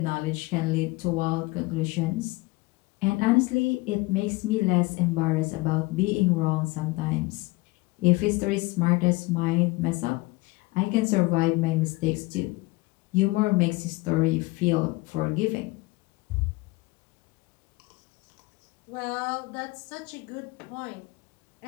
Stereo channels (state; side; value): quieter; right; 22.6 dB